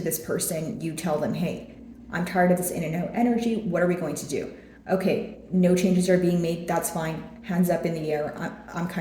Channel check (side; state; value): both; identical; correlation 1.00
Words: this person, you tell them, hey, I'm tired of this in and out energy. What are we going to do? Okay, no changes are being made. That's fine. Hands up in the air. I'm